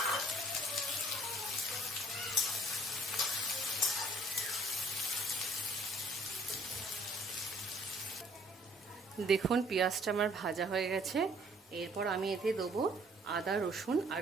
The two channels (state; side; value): normal; both; correlation 0.59